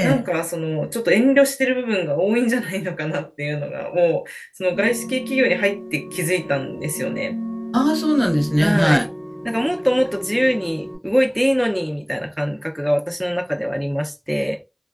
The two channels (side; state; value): both; identical; correlation 1.00